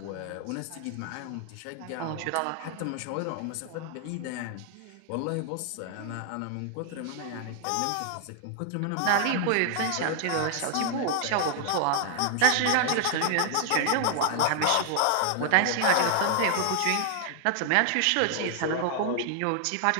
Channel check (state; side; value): different; both; correlation 0.00